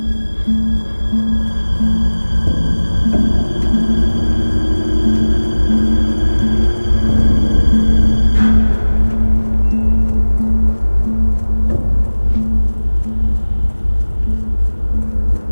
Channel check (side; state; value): both; inverted; correlation -1.00